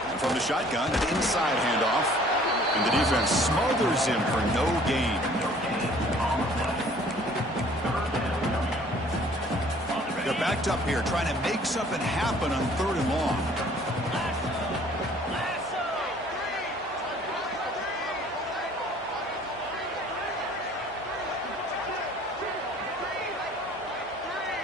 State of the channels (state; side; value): normal; both; correlation 0.54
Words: And from the shotgun, an inside handoff. And the defense smothers him for no gain. They're backed up here, trying to make something happen on 3rd and long.